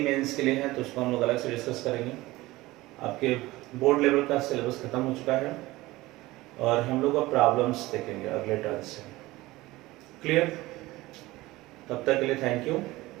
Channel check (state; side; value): quieter; left; 19.0 dB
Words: मेंस के लिए हैं, तो उसको हम लोग अलग से डिस्कस करेंगे। आपके बोर्ड लेवल का सिलेबस खत्म हो चुका है और हम लोग अब प्रॉब्लम्स देखेंगे अगले टर्म से। क्लियर? तब तक के लिए थैंक यू।